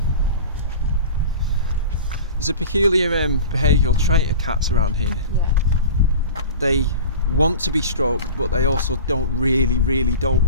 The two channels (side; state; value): both; inverted; correlation -0.36